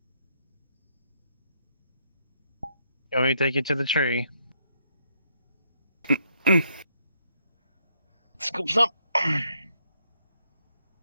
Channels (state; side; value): inverted; both; correlation -0.74